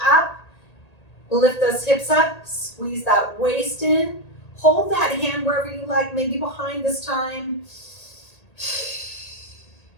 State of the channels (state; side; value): late; right; 1.8 ms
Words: up, lift those hips up, squeeze that waist in, hold that hand wherever you like, maybe behind this time.